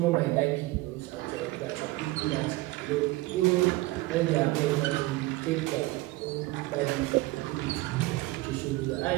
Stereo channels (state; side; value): quieter; left; 19.8 dB